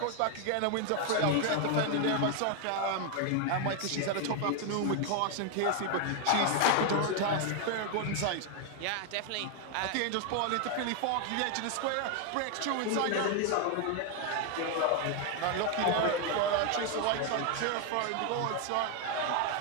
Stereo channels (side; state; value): both; different; correlation 0.00